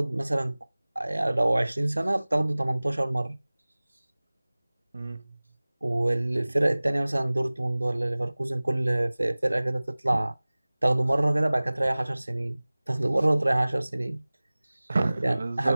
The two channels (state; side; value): inverted; both; correlation -0.99